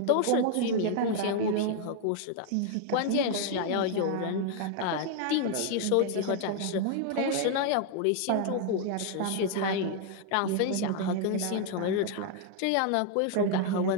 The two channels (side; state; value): both; different; correlation 0.00